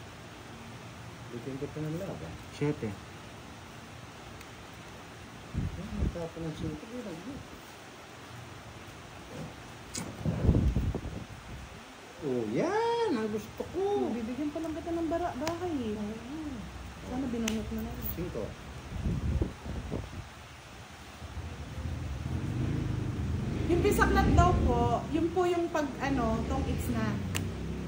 Bitin ko pa ng laban. 7. Nagtapon ng sinto. Oh, yan! Ang ang gusto ko. Bibigyan pa lang kita ng bahay eh. Sana binunot mo na rin. 5. Yung bisaklat daw po, yun po yung pag tong it's na.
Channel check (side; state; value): both; identical; correlation 1.00